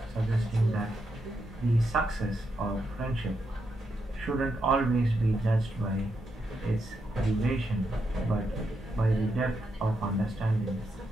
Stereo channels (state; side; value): normal; both; correlation 0.82